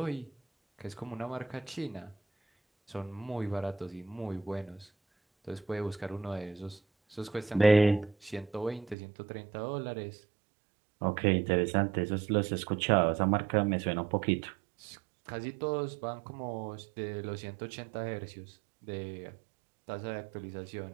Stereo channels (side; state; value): left; drops out; at 9.0 s